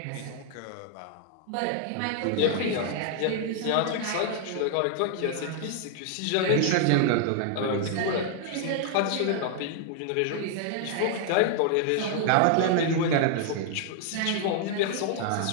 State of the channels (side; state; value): both; different; correlation 0.00